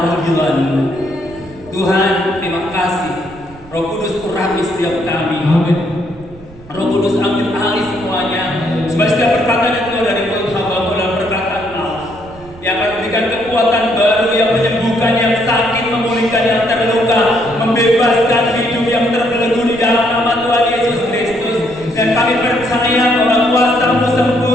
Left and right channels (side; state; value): right; noise; rumble, 21 dB below the sound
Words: panggilan. Tuhan, terima kasih. Roh Kudus urapi setiap kami. Amin. Roh Kudus ambil alih semuanya. Supaya setiap perkataan yang keluar dari mulut hamba adalah perkataan Allah yang akan memberikan kekuatan baru, yang menyembuhkan yang sakit, memulihkan yang terluka, membebaskan hidup yang terbelenggu di dalam nama Tuhan Yesus Kristus. Dan kami percaya bahwa kuasa-Mu